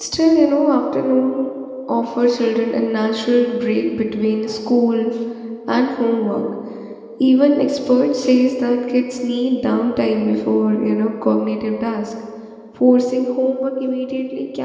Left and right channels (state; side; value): identical; both; correlation 1.00